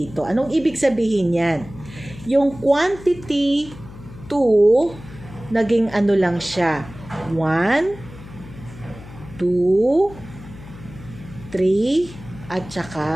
Anong ibig sabihin yan? Yung quantity 2, naging ano lang siya. 1, 2, 3, at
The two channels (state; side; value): noise; left; hum, 16 dB below the sound